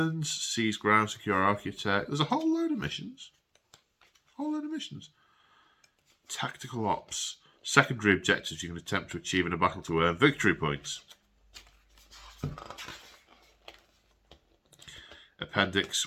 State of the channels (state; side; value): identical; both; correlation 1.00